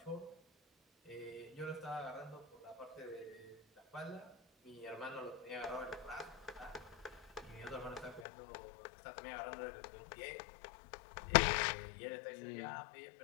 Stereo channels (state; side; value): drops out; right; at 8.2 s